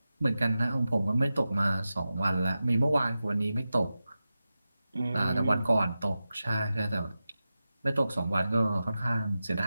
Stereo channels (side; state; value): both; inverted; correlation -0.93